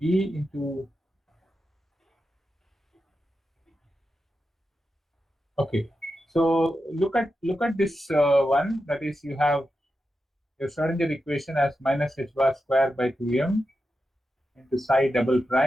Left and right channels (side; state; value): both; normal; correlation 0.89